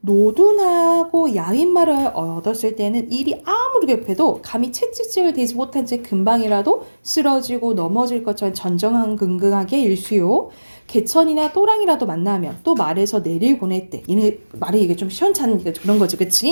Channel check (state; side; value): inverted; both; correlation -1.00